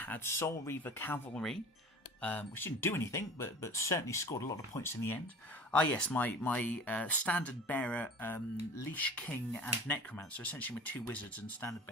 Soul Reaver Cavalry, which didn't do anything, but certainly scored a lot of points in the end. Yes, my Standard Bearer, Leash King and Necromancer, essentially my 2 wizards and Standard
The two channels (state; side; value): normal; both; correlation 0.41